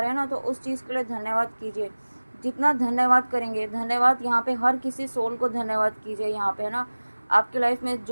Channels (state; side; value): inverted; both; correlation -1.00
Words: हैं ना, तो उस चीज़ के लिए धन्यवाद कीजिए। जितना धन्यवाद करेंगे, धन्यवाद यहाँ पे हर किसी सोल को धन्यवाद कीजिए। यहाँ पे है ना, आपकी लाइफ में